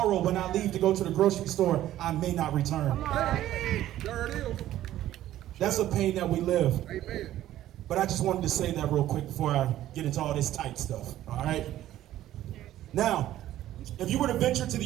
when I leave to go to the grocery store, I may not return. There it is. That's a pain that we live. Amen. But I just wanted to say that real quick before I get into all this tight stuff, all right? Now, if you were to venture to the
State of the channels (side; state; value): left; quieter; 13.4 dB